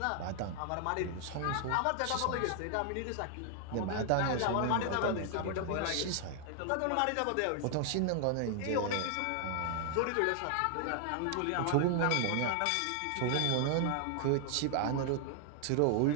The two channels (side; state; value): both; different; correlation 0.00